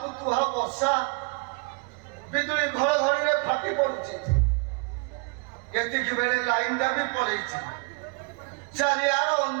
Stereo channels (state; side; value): quieter; left; 33.9 dB